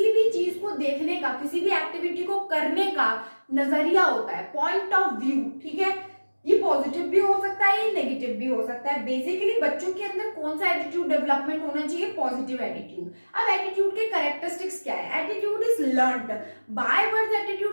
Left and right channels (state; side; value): inverted; both; correlation -1.00